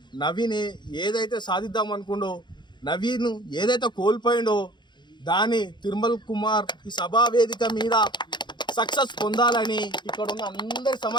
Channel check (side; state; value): right; late; 0.22 ms